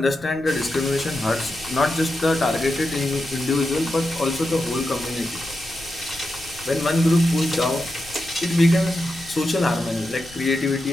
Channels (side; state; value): left; noise; rumble, 22 dB below the sound